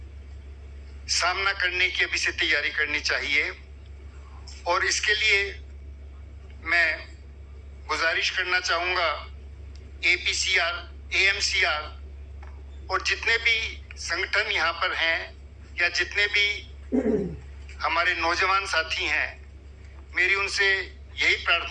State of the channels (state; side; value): identical; both; correlation 1.00